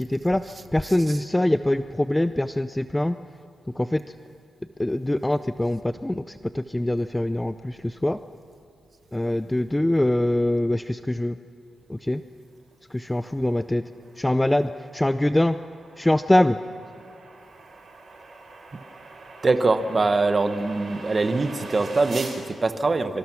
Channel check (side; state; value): both; normal; correlation 0.97